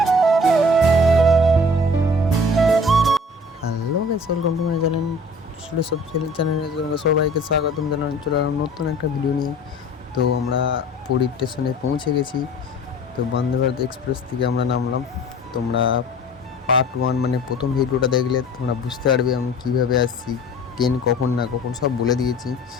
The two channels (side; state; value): both; normal; correlation 0.46